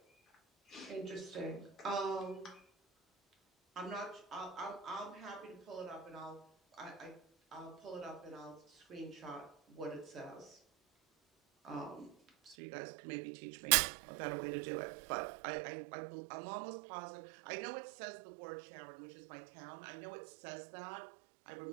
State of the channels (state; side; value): drops out; left; at 12.6 s